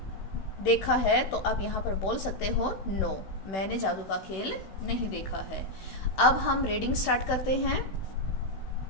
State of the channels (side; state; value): right; late; 16 ms